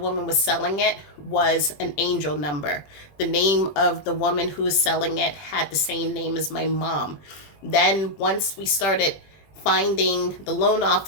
was selling it was an angel number. The name of the woman who was selling it had the same name as my mom. Then once we started finding the loan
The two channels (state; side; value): late; right; 21 ms